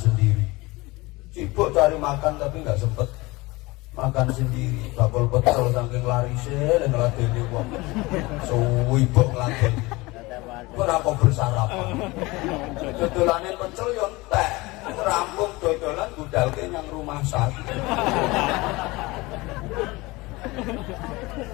Sibuk cari makan tapi nggak sempat makan sendiri. Bakul pecel saking larise dan ngeladeni wong. Suwibuk ngeladeni. Kenapa bersarapan? Dodolane pecel yo entek. Rampung dodolan budalke nang rumah sakit.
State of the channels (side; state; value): right; quieter; 22.4 dB